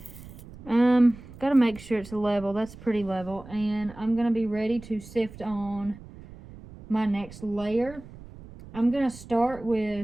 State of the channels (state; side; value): noise; right; rumble, 17 dB below the sound